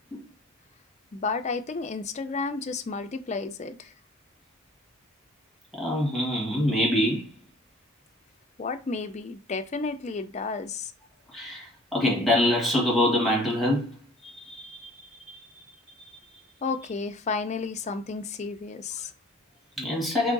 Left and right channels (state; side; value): normal; both; correlation 0.50